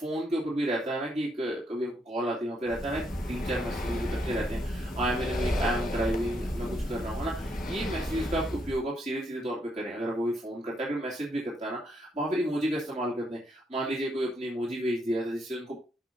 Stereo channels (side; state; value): both; normal; correlation 0.76